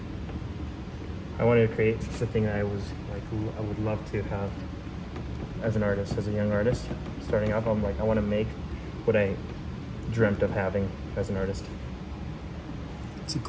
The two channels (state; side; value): identical; both; correlation 1.00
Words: I wanted to create the thing that I was like, I would love to have as an artist, as a young artist. Starting off, I'm like, I want to make what I dreamt of having as an artist. It's a